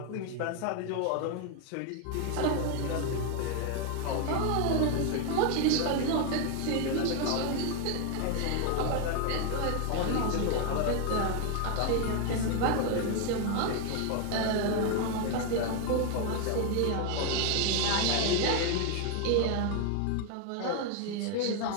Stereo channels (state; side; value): different; both; correlation 0.01